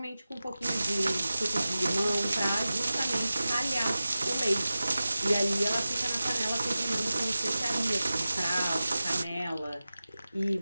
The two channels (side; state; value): both; inverted; correlation -0.95